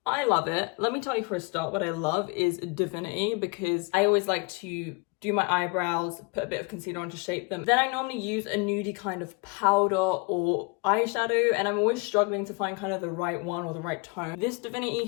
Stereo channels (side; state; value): right; quieter; 29.8 dB